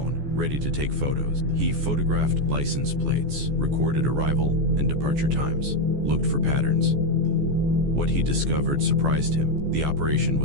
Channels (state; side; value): late; left; 14 ms